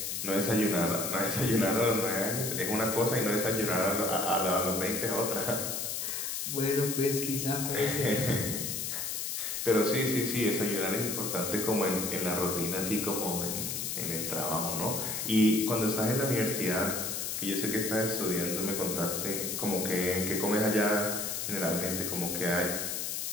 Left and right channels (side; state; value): left; noise; hiss, 3 dB below the sound